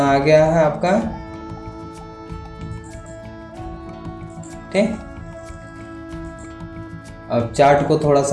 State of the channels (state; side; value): identical; both; correlation 1.00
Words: आ गया है आपका। ठीक, अब चार्ट को थोड़ा